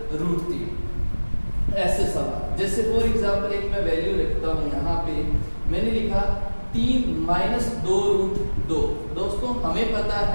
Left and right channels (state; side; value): inverted; both; correlation -1.00